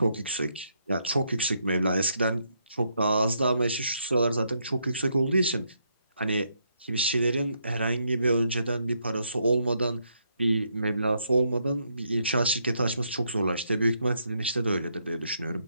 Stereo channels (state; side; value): inverted; both; correlation -0.76